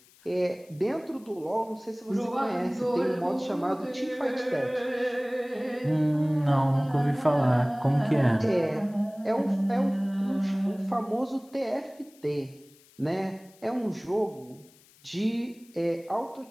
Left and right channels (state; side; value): noise; left; hiss, 28 dB below the sound